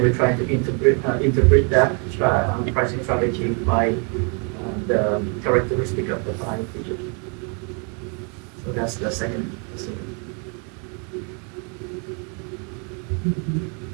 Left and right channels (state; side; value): quieter; left; 37.2 dB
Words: we're trying to interpret that pricing strategy by the characteristic of the 5 features. So that's the second procedure.